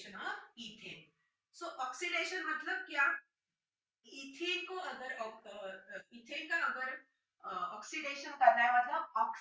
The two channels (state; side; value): identical; both; correlation 1.00